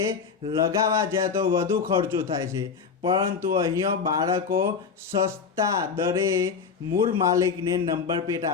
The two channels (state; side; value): quieter; right; 5.8 dB